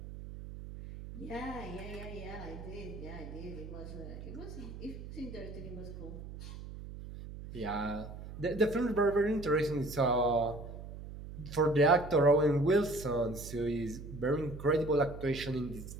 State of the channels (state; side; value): noise; right; hum, 11 dB below the sound